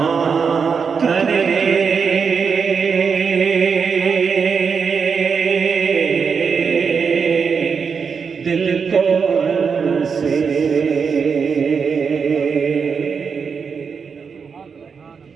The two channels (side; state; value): left; quieter; 5.9 dB